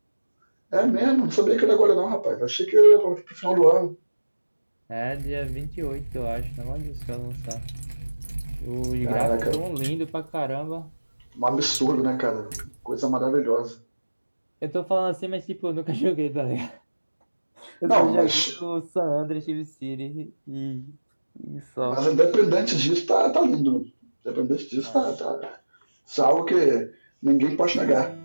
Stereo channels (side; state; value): both; inverted; correlation -1.00